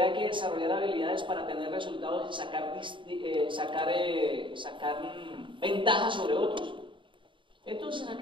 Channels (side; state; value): left; late; 0.24 ms